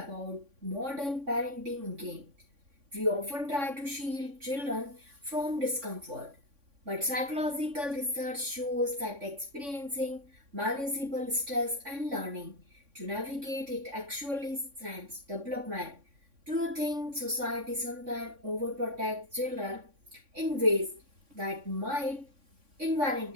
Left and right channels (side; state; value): left; late; 3.6 ms